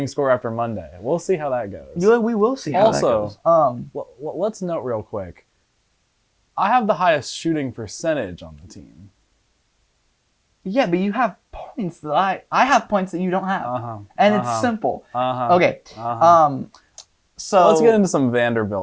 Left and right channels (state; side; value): identical; both; correlation 1.00